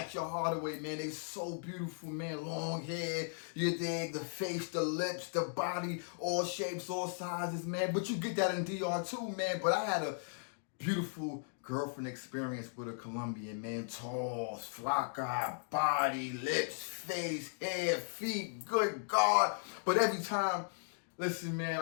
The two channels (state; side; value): silent; right; digital silence